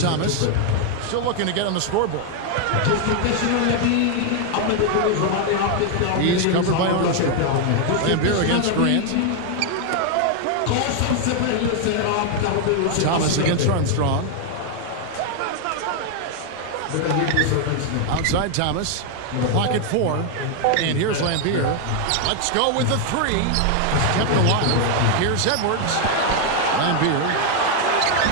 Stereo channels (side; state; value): both; different; correlation 0.01